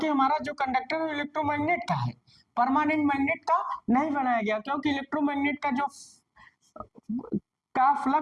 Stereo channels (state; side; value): identical; both; correlation 1.00